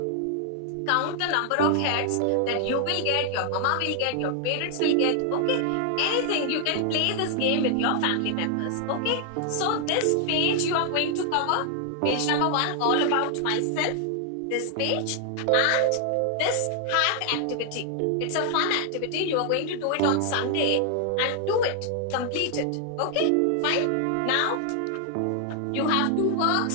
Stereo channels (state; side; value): different; both; correlation 0.00